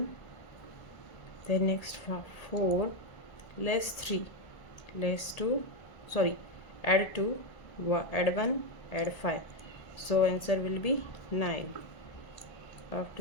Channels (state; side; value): late; right; 1.8 ms